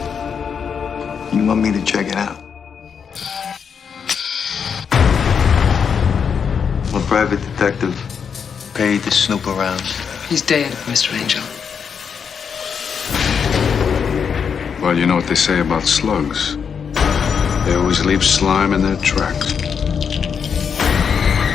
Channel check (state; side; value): quieter; right; 6.8 dB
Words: You want me to check it out? I'm a private detective paid to snoop around. He's dead, Mr. Angel. Well, you know what they say about slugs. They always leave slime in their tracks.